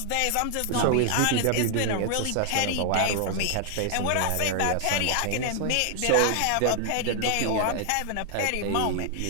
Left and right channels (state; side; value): different; both; correlation 0.00